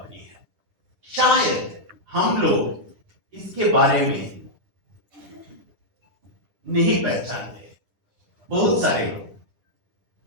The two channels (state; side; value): late; left; 10 ms